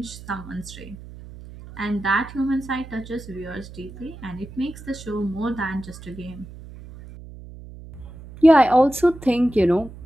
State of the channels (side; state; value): right; noise; hum, 16 dB below the sound